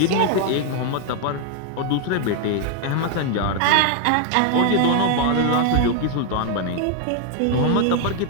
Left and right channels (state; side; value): different; both; correlation 0.00